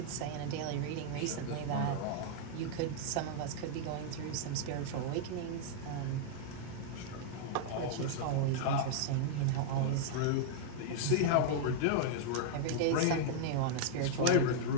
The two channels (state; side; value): different; both; correlation -0.01